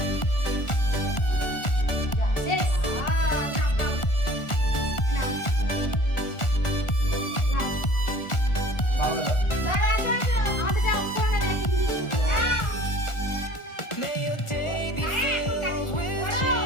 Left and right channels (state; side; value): late; right; 1.4 ms